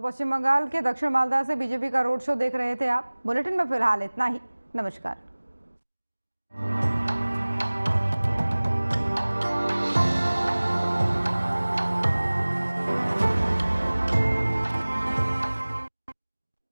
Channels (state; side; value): inverted; both; correlation -1.00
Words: पश्चिम बंगाल के दक्षिण मालदा से बीजेपी का रोड शो देख रहे थे आप। बुलेटिन में फिलहाल इतना ही। नमस्कार।